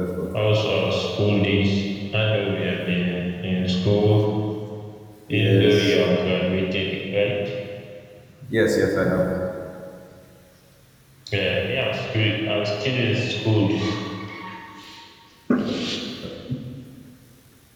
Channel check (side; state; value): both; identical; correlation 1.00